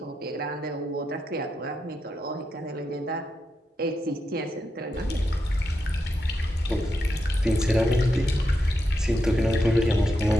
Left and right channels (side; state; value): both; normal; correlation 0.85